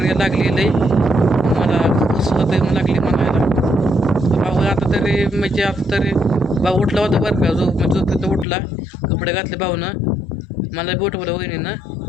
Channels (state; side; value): drops out; right; at 8.5 s